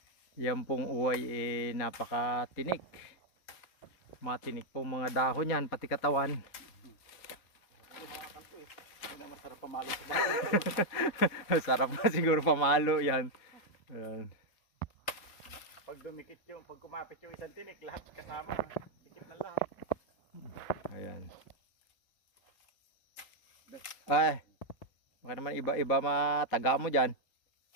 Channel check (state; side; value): late; right; 4.0 ms